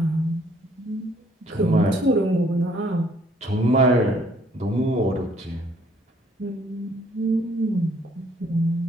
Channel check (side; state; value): both; normal; correlation 0.63